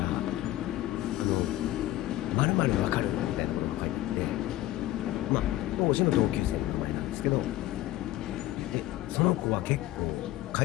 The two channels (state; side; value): quieter; right; 15.5 dB